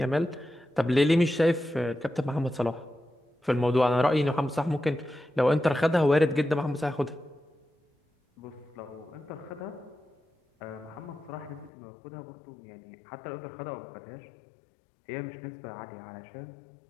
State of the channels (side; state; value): right; drops out; at 11.7 s